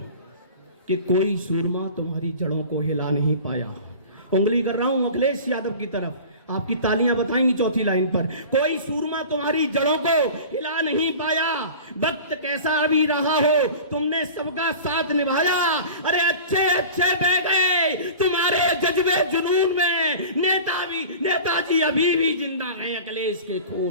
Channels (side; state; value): both; inverted; correlation -0.38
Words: कि कोई सूरमा तुम्हारी जड़ों को हिला नहीं पाया। उंगली कर रहा हूं अखिलेश यादव की तरफ, आपकी तालियां बताएंगी चौथी लाइन पर। कोई सूरमा तुम्हारी जड़ों को हिला नहीं पाया, वक्त कैसा अभी रहा हो तुमने सबका साथ निभाया। अरे अच्छे अच्छे बह गए तुम्हारे जज्बे जुनून में, नेताजी अभी भी जिंदा है अखिलेश के